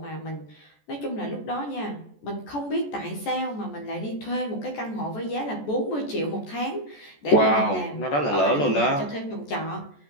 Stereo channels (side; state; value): right; late; 14 ms